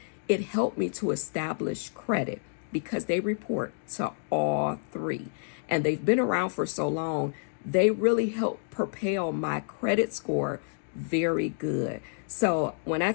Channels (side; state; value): right; silent; digital silence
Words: It helped me to establish credit because they report to all 3. And they've been around for so long, they really help propel my credit score very good. So when I